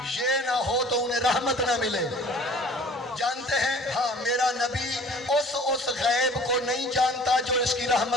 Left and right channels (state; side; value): normal; both; correlation 0.48